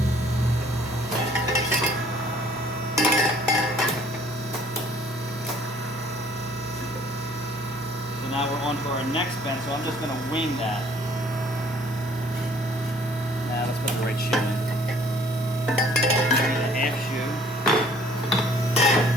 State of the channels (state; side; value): normal; both; correlation 0.57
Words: So now we're on to our next bend, so I'm just going to wing that. Now let's put the right shoe in. A half shoe.